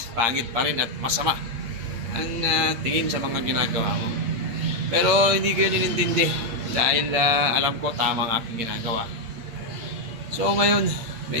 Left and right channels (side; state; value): left; late; 8.6 ms